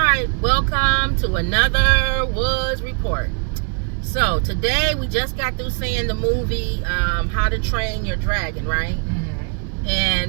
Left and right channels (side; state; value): left; quieter; 39.6 dB